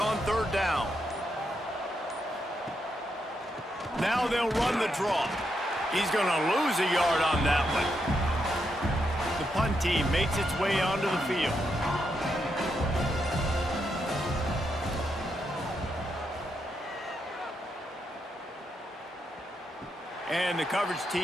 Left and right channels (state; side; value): normal; both; correlation 0.82